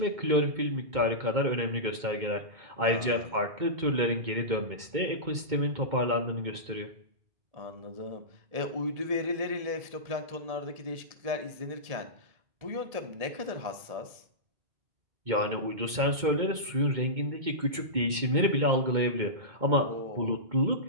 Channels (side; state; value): left; late; 2.2 ms